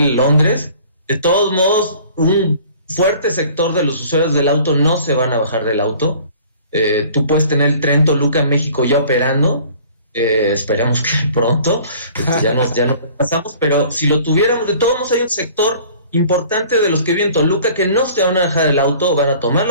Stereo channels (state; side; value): inverted; both; correlation -0.50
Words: Londres, de todos modos, un fuerte sector de los usuarios del auto no se van a bajar del auto. Tú puedes tener el tren Toluca México ya operando, esperemos que pronto, ya nos pasamos, pero si lo tuviéramos, de todos modos hay un sector importante de los que viven en Toluca que no se van a bajar del auto, van a tomar